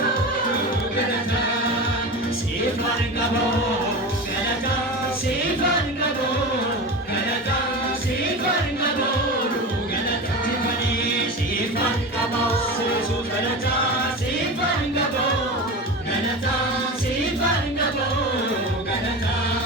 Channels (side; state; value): both; normal; correlation 0.27